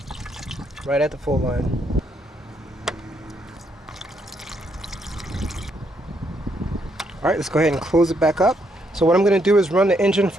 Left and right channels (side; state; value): both; normal; correlation 0.75